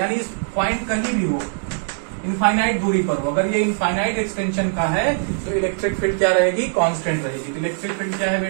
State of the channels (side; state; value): left; silent; digital silence